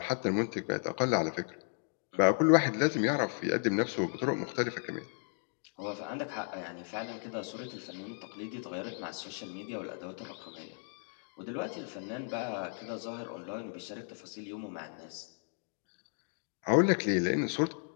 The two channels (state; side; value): silent; right; 55 dB below the other